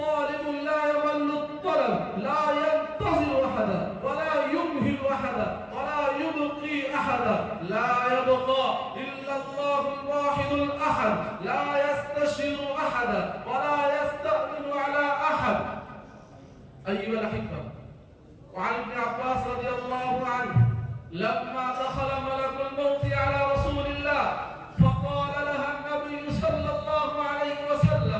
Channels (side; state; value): both; identical; correlation 1.00